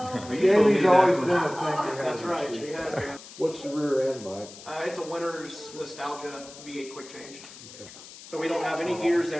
Jamie's always been a thing. That's right, she has, man. What's the rear end, Mike? It's a winner's nostalgia V8 quick change. Okay. So we don't have any gears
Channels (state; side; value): noise; left; hiss, 17 dB below the sound